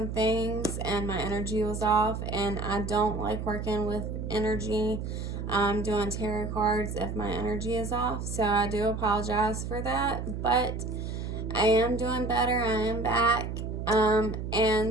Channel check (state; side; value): noise; right; hum, 5 dB below the sound